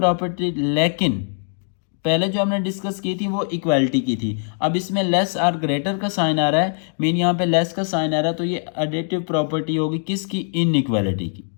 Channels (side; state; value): right; silent; 60 dB below the other